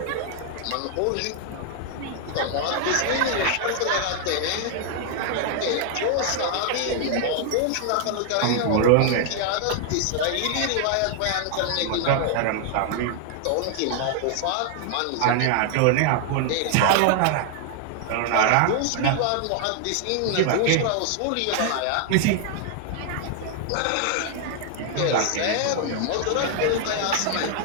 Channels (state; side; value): different; both; correlation 0.00